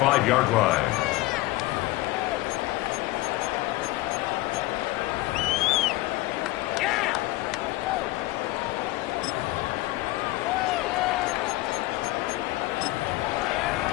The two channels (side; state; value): right; quieter; 18.8 dB